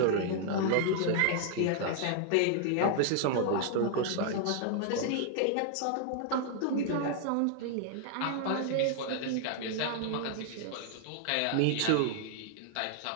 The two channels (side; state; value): both; different; correlation 0.00